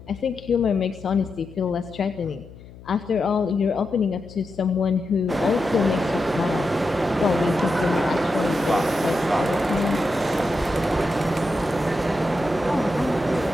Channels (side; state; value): left; noise; hum, 19 dB below the sound